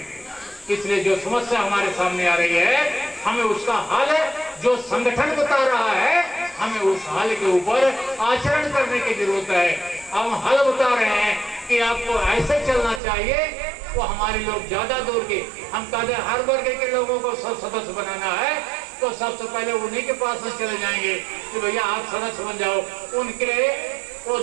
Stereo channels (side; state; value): left; drops out; at 13.0 s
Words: इसलिए जो समस्या हमारे सामने आ रही है, हमें उसका हल जो संगठन बता रहा है, हमें उस हल के ऊपर आचरण करने की जरूरत है। हम हल बता रहे हैं कि आपको ऐसे चलना चाहिए, वो हमारे लोग ज्यादा दूर के, हम कहते हैं हर वर्ग के लोगों को सब सदस्य बनाना है, तो सबसे पहले उन्हीं के पास में चले जाएंगे कि भैया आप सदस्य बन जाओ। उनके वो